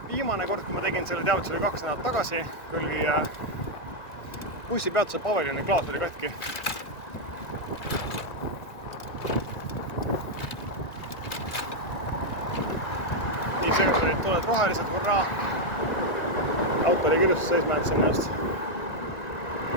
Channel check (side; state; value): right; late; 1.9 ms